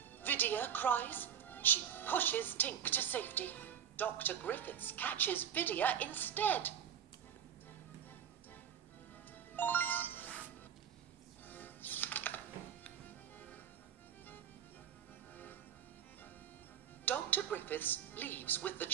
Vidya cries. She pushes Tink to safety. Dr. Griffiths catches Vidya instead. Dr. Griffiths leaves with the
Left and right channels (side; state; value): left; quieter; 9.2 dB